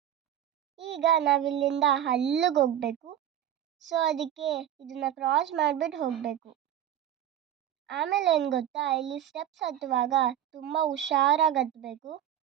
ಈಗ ನಾವಿಲ್ಲಿಂದ ಅಲ್ಲಿಗೆ ಹೋಗಬೇಕು. ಸೊ ಅದಕ್ಕೆ ಇದನ್ನ ಕ್ರಾಸ್ ಮಾಡಿಬಿಟ್ಟು ಹೋಗಬೇಕು. ಆಮೇಲೆ ಏನು ಗೊತ್ತಾ, ಇಲ್ಲಿ ಸ್ಟೆಪ್ಸ್ ಹತ್ತುವಾಗ ತುಂಬ ಹುಷಾರಾಗಿ ಹತ್ತಬೇಕು.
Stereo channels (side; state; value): left; quieter; 10.8 dB